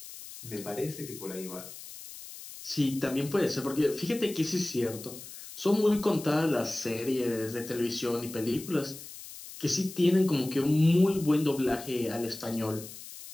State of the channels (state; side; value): noise; left; hiss, 14 dB below the sound